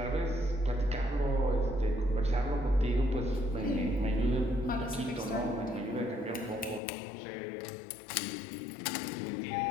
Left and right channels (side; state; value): right; drops out; at 6.8 s